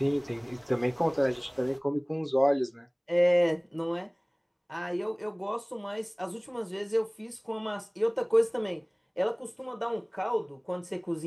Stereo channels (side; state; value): both; identical; correlation 1.00